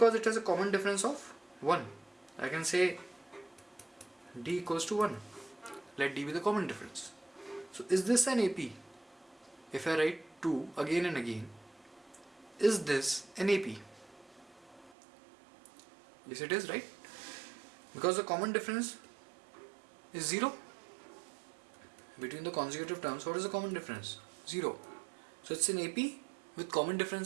it has a common difference of 1. I can say D equals to 1. Let D be the common difference. So is this an AP? If I write 2 again and again, is this an AP? Yes, it is, right? Because the common difference is 0. Between the consecutive terms, what is the common difference? 0. So it's an AP with common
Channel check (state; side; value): drops out; left; at 14.9 s